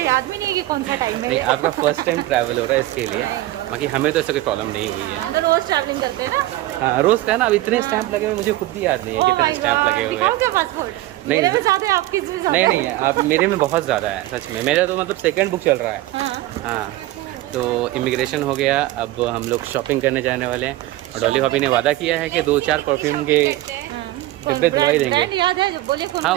याद भी नहीं कि कौन सा टाइम है। नहीं आपका फर्स्ट टाइम ट्रैवल हो रहा है इसके लिए, बाकी हमें तो ऐसा कोई प्रॉब्लम नहीं हुई है। हम तो रोज ट्रैवलिंग करते हैं ना। हाँ रोज़ का है ना। अब इतने स्टैंप लगे हुए मुझे खुद भी याद नहीं है कितने स्टैंप लगे हुए हैं। क्या पासपोर्ट नहीं मेरे में ज़्यादा है, आपके इसमें ज़्यादा नहीं है। नहीं है, आप मेरे में बहुत ज़्यादा है सच में। मेरा तो मतलब सेकंड बुक चल रहा है। हाँ तो इमिग्रेशन हो गया, अब हम लोग शॉपिंग करने जाने वाले हैं। और डॉली भाभी ने वादा किया है कि 2-4 परफ्यूम के डिब्बे दिलवाई देंगे। याद है जो बोले कौन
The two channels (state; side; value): quieter; left; 16.6 dB